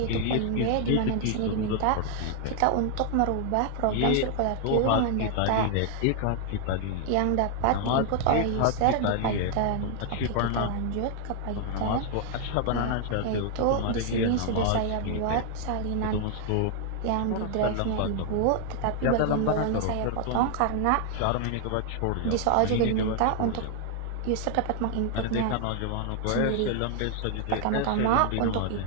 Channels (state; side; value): different; both; correlation 0.00